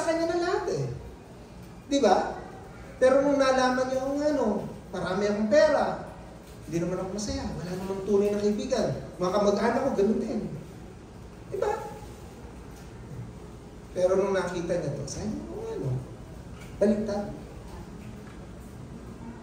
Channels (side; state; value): both; identical; correlation 1.00